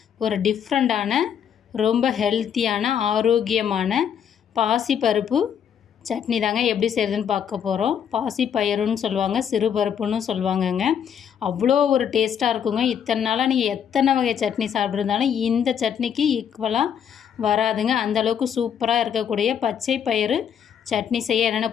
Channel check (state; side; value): quieter; right; 8.3 dB